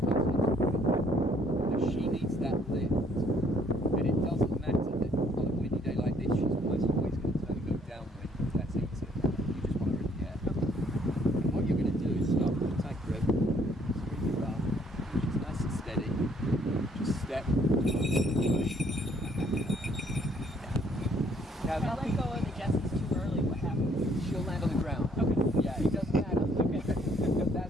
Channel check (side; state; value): both; normal; correlation 0.65